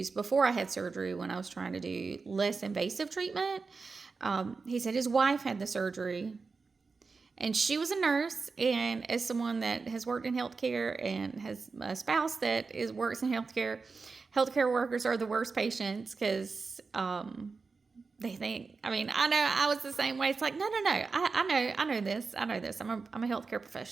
before I had surgery, when I was trying to do less invasive treatment. He said his wife had the surgery, and she was a nurse, and as someone that has worked in healthcare and has a spouse that works in healthcare workers are the worst patients, because they think, I know I was the same way. It's like, no, I know this. I'm a healthcare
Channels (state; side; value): quieter; left; 4.5 dB